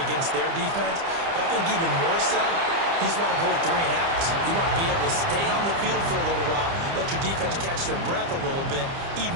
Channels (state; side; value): late; left; 30 ms